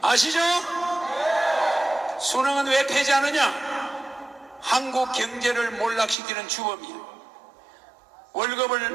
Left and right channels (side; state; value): left; drops out; at 6.2 s